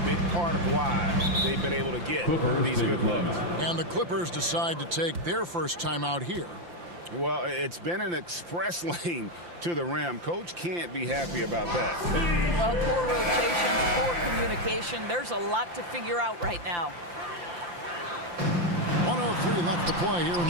big part of why they've been able to get these good looks. And the Clippers decide to take their first timeout here. Well, it's been an express lane to the rim. Coach can't be happy about that. Well, poor rotations, poor communication. There's a lot to figure out right now. 1:03 left to play here in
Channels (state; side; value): late; left; 5.8 ms